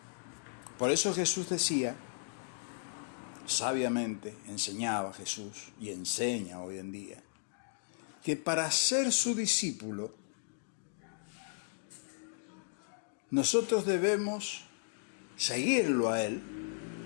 Por eso Jesús decía, sabiamente enseñaba Jesús y enseña hoy en día, que para ser su discípulo, nosotros debemos seguirlo a Él,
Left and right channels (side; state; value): right; silent; digital silence